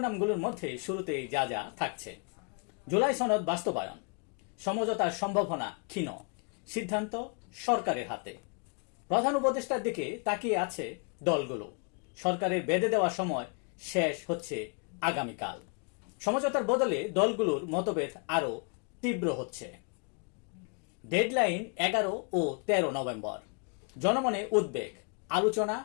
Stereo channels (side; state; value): right; quieter; 37.7 dB